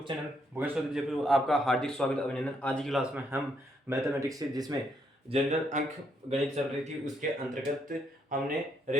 channel Bhupesh Chaudhary Jaipur. आपका हार्दिक स्वागत अभिनंदन। आज की क्लास में हम मैथमेटिक्स से जिसमें जनरल अंक गणित चल रही थी उसके अंतर्गत हमने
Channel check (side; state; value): both; normal; correlation 0.74